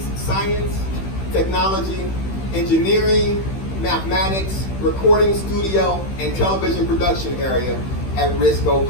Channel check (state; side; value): late; right; 15 ms